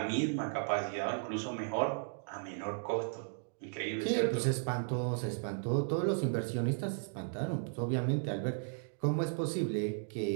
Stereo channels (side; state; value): left; silent; digital silence